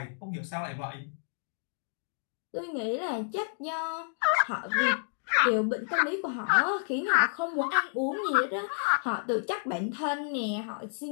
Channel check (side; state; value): right; silent; digital silence